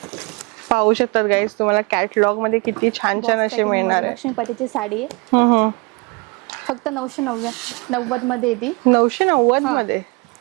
पाहू शकतात गाईज, तुम्हाला कॅटलॉग मध्ये किती छान छान असे मिळणार आहे. लक्ष्मीपतीची साडी आहे. फक्त 990 मध्ये येते. 990 मध्ये.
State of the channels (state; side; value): quieter; left; 28.8 dB